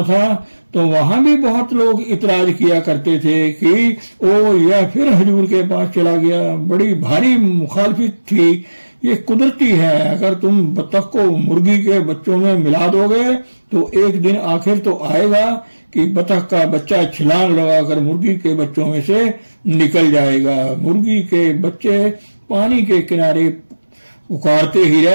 था तो वहां भी बहुत लोग इतराज किया करते थे कि ओ यह फिर हुजूर के पास चला गया। बड़ी भारी मुखालफत थी। ये कुदरती है, अगर तुम बतख को मुर्गी के बच्चों में मिला दोगे तो एक दिन आखिर तो आएगा कि बतख का बच्चा छलांग लगाकर मुर्गी के बच्चों में से निकल जाएगा। मुर्गी के बच्चे पानी के किनारे पुकारते ही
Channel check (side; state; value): both; inverted; correlation -1.00